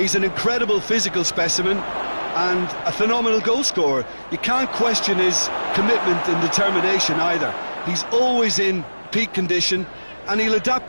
an incredible physical specimen and a phenomenal goal scorer. You can't question his commitment and determination either. He's always in peak condition and he'll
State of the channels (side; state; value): both; inverted; correlation -1.00